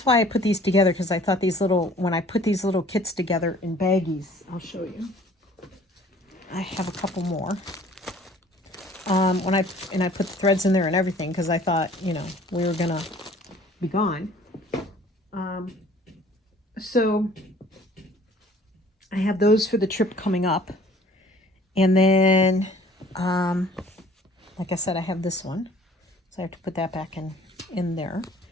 why I put these together, because I thought these little, when I put these little kits together in baggies, I'll show you. I have a couple more. I put the threads in there and everything, because I thought, you know, we were going to be gone. So I have those for the trip coming up. And then, like I said, I have this one. So I have to put that back in there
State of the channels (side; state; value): both; normal; correlation 0.52